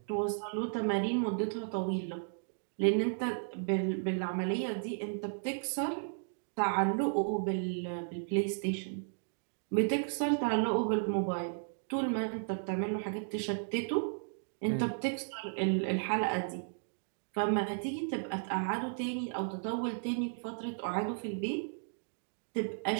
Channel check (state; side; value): silent; left; digital silence